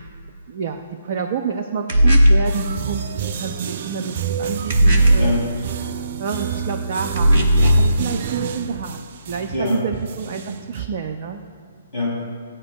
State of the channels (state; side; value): inverted; both; correlation -0.80